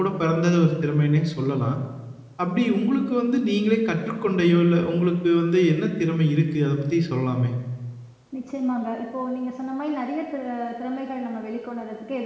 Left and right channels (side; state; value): both; identical; correlation 1.00